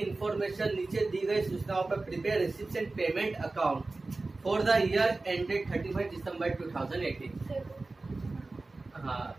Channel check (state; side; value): quieter; left; 3.4 dB